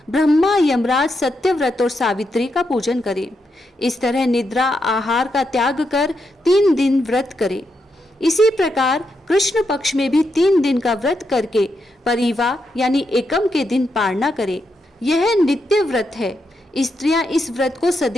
ब्रह्मा, यमराज, सत्यव्रत और सावित्री का पूजन करें। इस तरह निद्रा, आहार का त्याग कर 3 दिन व्रत करें। इसी प्रकार कृष्ण पक्ष में भी 3 दिन का व्रत करके परिवा यानी एकम के दिन पारना करें। यह नित्य व्रत है। स्त्रियां इस व्रत को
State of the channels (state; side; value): normal; both; correlation 0.83